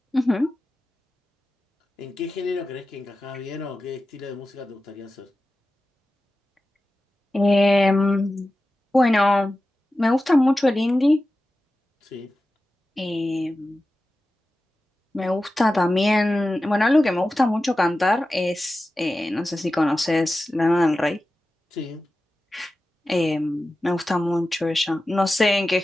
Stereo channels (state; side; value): normal; both; correlation 0.94